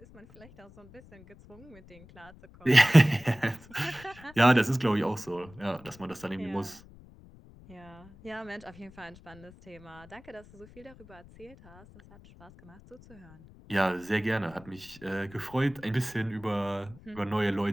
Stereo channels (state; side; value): noise; left; rumble, 22 dB below the sound